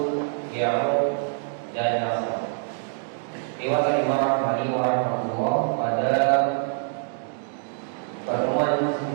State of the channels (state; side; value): silent; left; digital silence